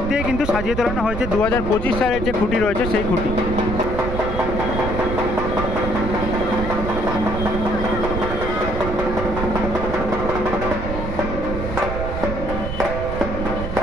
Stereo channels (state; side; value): noise; right; rumble, 5 dB below the sound